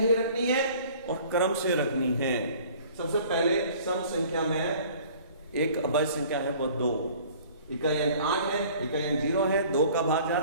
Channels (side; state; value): both; inverted; correlation -0.50